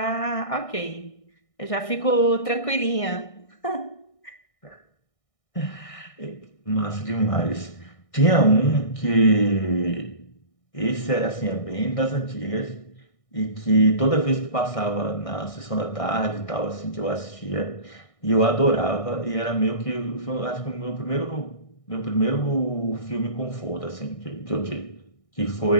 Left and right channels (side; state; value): right; late; 1.6 ms